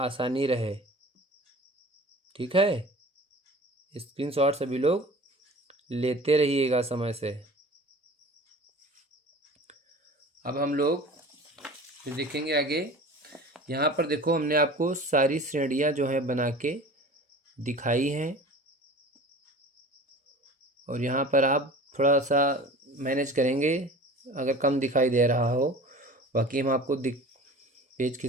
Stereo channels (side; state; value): both; normal; correlation 0.40